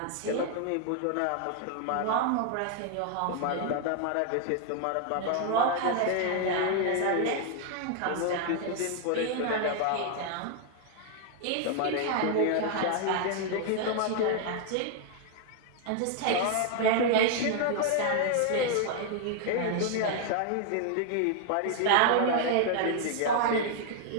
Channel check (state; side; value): different; both; correlation 0.00